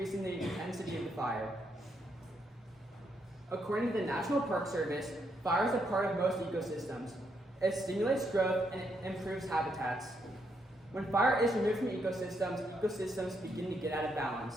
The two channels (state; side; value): normal; both; correlation 0.77